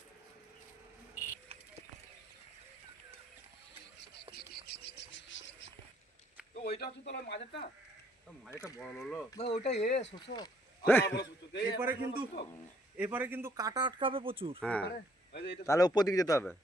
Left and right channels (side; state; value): both; normal; correlation 0.66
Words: ওইটা হচ্ছে তোর মাঝেরটা, মাঝেরটা বড় হলো ওইটা শোষক। এবারে কিন্তু কাটা আটকাবে প্রচুর। হ্যাঁ, তাহলে উপর দিকে যেতে হবে।